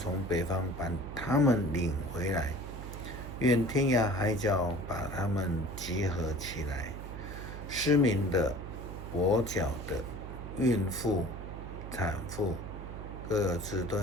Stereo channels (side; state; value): right; noise; hum, 9 dB below the sound